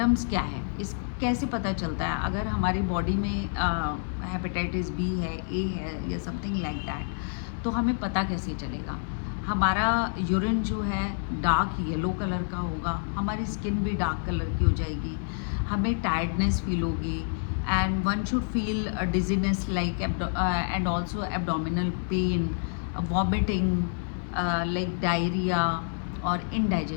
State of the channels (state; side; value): silent; right; digital silence